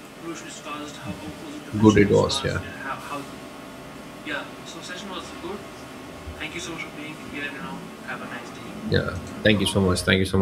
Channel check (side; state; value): both; identical; correlation 1.00